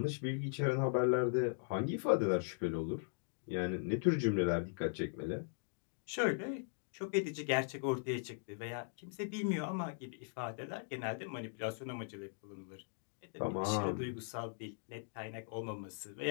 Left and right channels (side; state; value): right; silent; digital silence